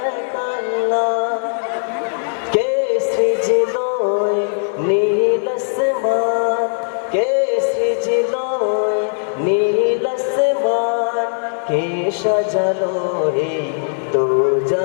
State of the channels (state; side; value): silent; right; digital silence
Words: এক আল্লাহ, কে সৃজিল নীল আসমান, কে সৃজিল নীল আসমান, কে সাজালো এই দো